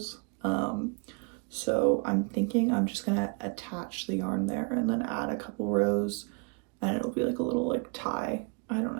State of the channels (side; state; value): left; quieter; 35.1 dB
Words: So I'm thinking I'm just gonna attach the yarn there and then add a couple rows, and it'll be like a little like tie, I don't